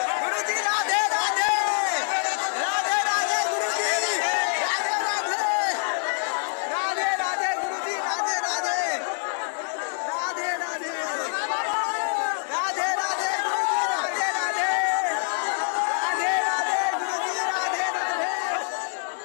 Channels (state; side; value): silent; right; digital silence